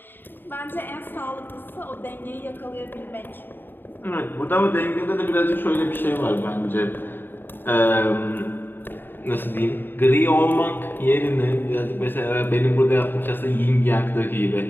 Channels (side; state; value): right; late; 0.095 ms